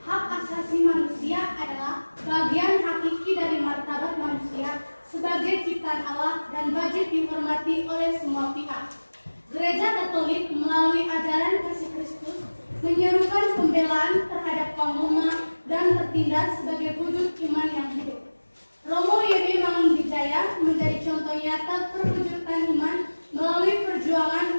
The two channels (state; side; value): inverted; both; correlation -1.00